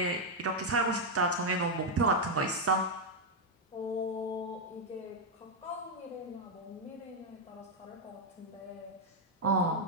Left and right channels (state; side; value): normal; both; correlation 0.00